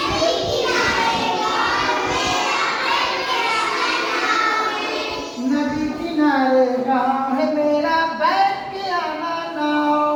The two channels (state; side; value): identical; both; correlation 1.00